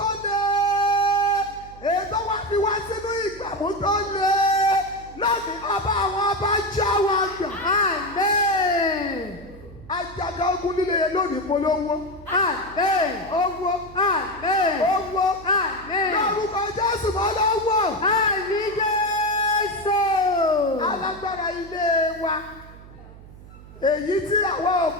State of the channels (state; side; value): noise; right; hum, 19 dB below the sound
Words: lé ètò wa fi wá sínú ìgbàmú tó lé lónìí ọba àwọn ọba já wa gbà. Àmín. Ajaga ogun líle yẹn lónìí polówó. Àmín. Owó. Àmín. Owó. Àmín. Lórúkọ Jésù mọ́ lọ́wọ́. Àmín Jésù. Alágbára ilé wa èyí tí àwọn